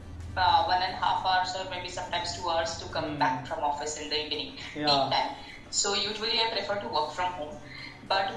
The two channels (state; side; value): identical; both; correlation 1.00